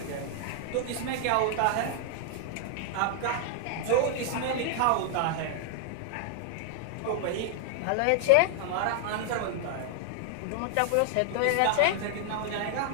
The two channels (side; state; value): both; different; correlation 0.00